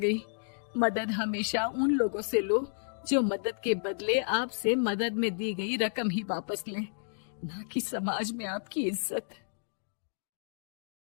मदद हमेशा उन लोगों से लो जो मदद के बदले आपसे मदद में दी गई रकम ही वापस लें, ना कि समाज में आपकी इज्जत।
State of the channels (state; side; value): silent; right; digital silence